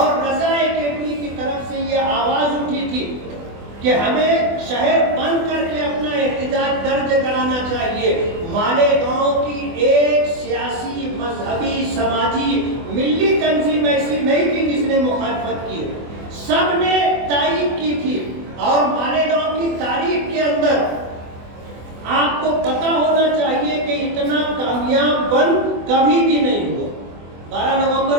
رضا کیفی کی طرف سے یہ آواز اٹھی تھی کہ ہمیں شہر بند کر کے اپنا احتجاج درج کرانا چاہیے. مالیگاؤں کی ایک سیاسی، مذہبی، سماجی، ملی تنظیم ایسی نہیں تھی جس نے مخالفت کی، سب نے تائید کی تھی. اور مالیگاؤں کی تاریخ کے اندر آپ کو پتا ہونا چاہیے کہ اتنا کامیاب بند کبھی بھی نہیں ہوا. 12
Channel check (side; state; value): left; late; 24 ms